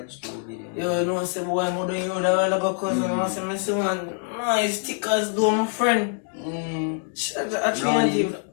the video. Yo, you know say boy I'm doing you that all about cause I want to see one nice stickers do my friend.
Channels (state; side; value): silent; right; 56 dB below the other